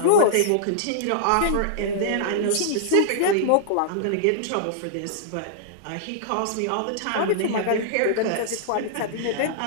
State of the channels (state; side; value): different; both; correlation -0.01